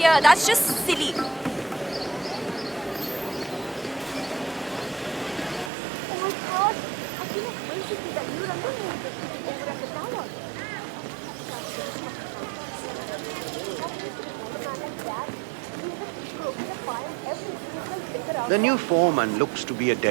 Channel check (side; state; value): left; drops out; at 5.7 s